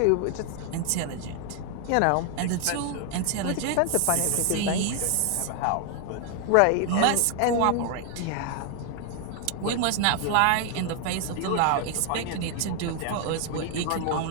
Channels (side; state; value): both; different; correlation 0.00